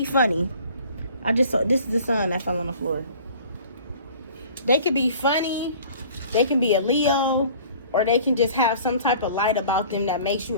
funny. I just saw, this is the sun that fell on the floor. They could be funny, they can be a Leo, or they can just have some type of light about them that makes you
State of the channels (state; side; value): inverted; both; correlation -0.48